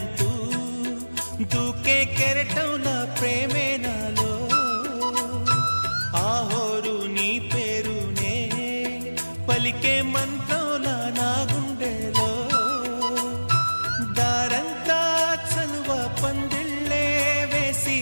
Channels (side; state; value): both; inverted; correlation -1.00